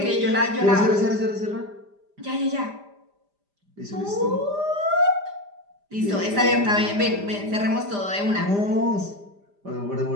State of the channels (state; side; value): late; left; 5.0 ms